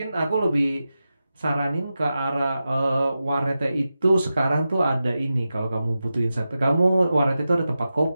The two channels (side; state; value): both; inverted; correlation -0.92